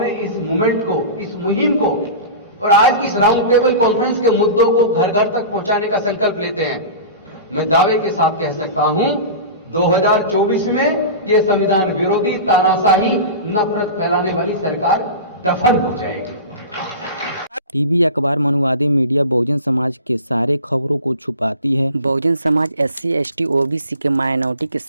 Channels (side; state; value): both; inverted; correlation -0.33